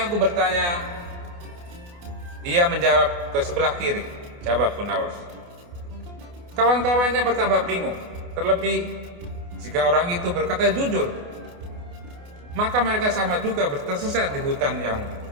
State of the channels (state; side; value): late; left; 28 ms